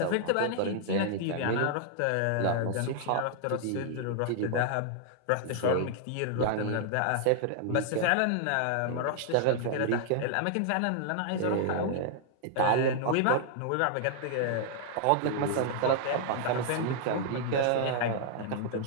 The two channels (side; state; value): both; different; correlation -0.01